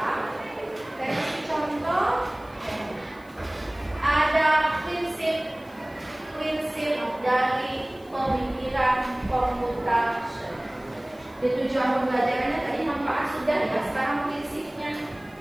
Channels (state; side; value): noise; left; hiss, 28 dB below the sound